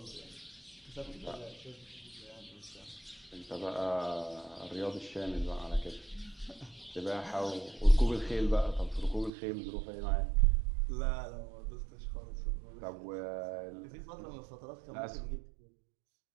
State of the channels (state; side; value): drops out; left; at 9.3 s